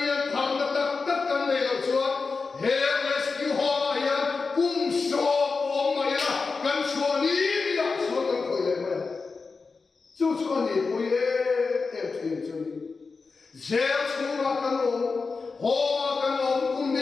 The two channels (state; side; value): quieter; right; 4.4 dB